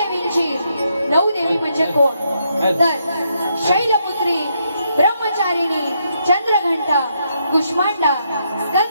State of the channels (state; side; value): inverted; both; correlation -0.77